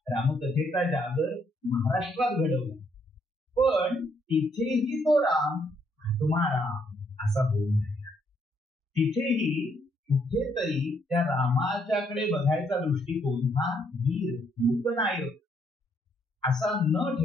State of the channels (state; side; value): normal; both; correlation 0.72